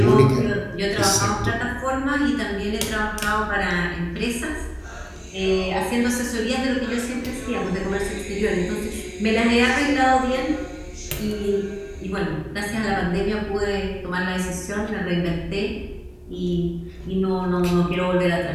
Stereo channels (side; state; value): both; identical; correlation 1.00